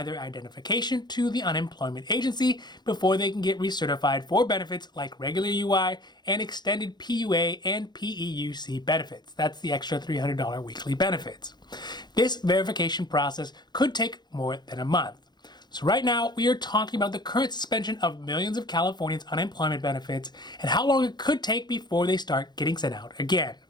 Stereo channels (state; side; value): late; right; 0.21 ms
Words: their identification to the unemployment agency before they can get recertified for benefits like regular UI and extended PUA and PEUC benefits. That's the extra $300 weekly benefits. This verification process could take more than a month. So right now, we are talking about the current suspension of millions of Californians' unemployment benefits and how long it could take before they start getting sent out again.